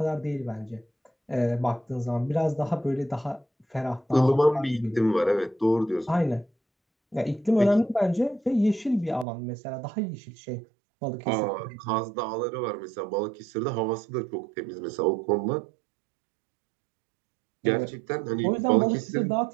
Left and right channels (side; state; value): left; drops out; at 9.2 s